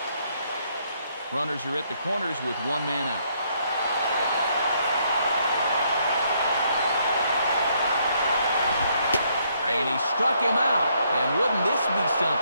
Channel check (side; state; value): both; inverted; correlation -0.71